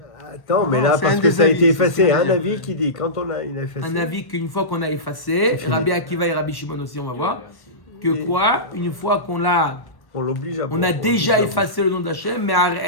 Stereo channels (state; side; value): late; right; 1.1 ms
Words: Attends, mais Non, là, c'est parce un que des ça a avis, été c'est ce effacé. qu'il a Un dit. avis qui dit, quand il a effacé. Un avis qu'une fois qu'on a effacé, Rabbi Akiva et Rabbi Shimon aussi, on va voir, que quoi, une fois qu'on l'a, On l'oblige à on a déjà effacé le nom d'Hachem, mais